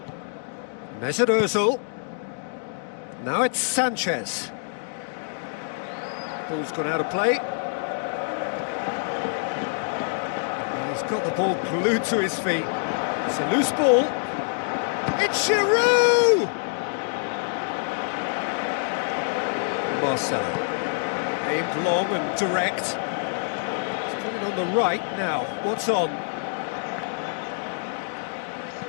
Mesut Ozil. Now it's Sanchez. Ball's gone out of play. He's got the ball glued to his feet. It's a loose ball. It's Giroud! Marcelo. Aimed long and direct. On the right now, what's on?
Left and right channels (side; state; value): right; silent; digital silence